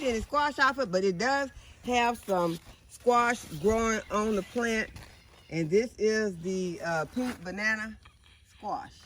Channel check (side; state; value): both; identical; correlation 1.00